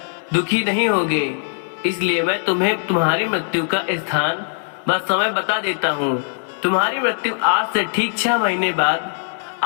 दुखी नहीं होगे। इसलिए मैं तुम्हें तुम्हारी मृत्यु का स्थान व समय बता देता हूँ। तुम्हारी मृत्यु आज से ठीक 6 महीने बाद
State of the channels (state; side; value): silent; right; 65 dB below the other